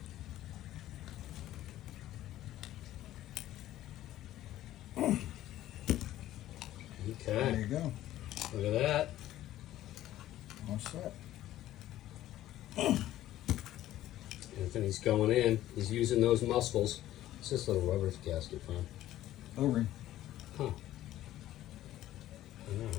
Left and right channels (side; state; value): right; quieter; 13.9 dB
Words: There Okay, you go. look at that. All set. Anthony's going in. He's using those muscles. What's this little rubber gasket from? O-ring. Huh. I know,